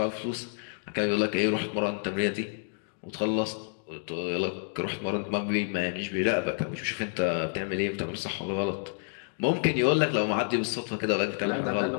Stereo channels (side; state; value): right; silent; 59 dB below the other